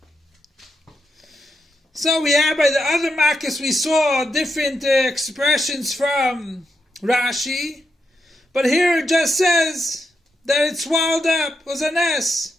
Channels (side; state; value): both; normal; correlation 0.84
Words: So we have by the other Makis, we saw different expressions from Rashi. But here it just says that it swallowed up, was a ness.